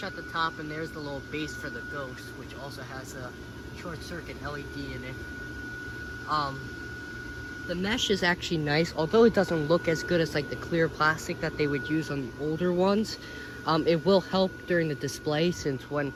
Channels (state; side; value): identical; both; correlation 1.00